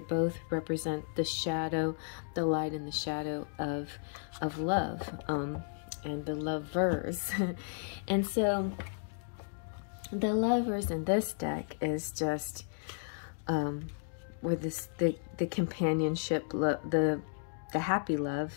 both represent the shadow, the light and the shadow of love, and the lovers. And so the Lovers in this deck is just with the companionship, the happy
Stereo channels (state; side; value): silent; right; digital silence